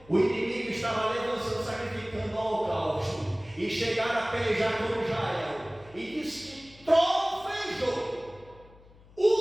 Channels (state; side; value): noise; left; hum, 24 dB below the sound